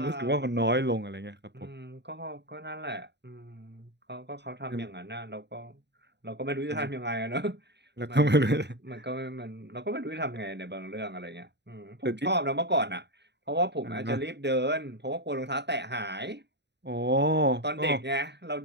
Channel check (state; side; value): late; left; 0.50 ms